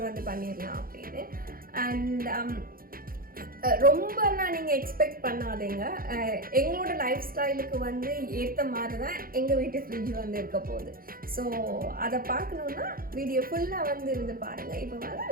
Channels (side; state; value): left; late; 0.42 ms